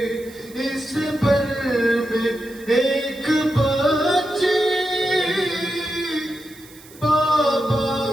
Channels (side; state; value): right; noise; hiss, 22 dB below the sound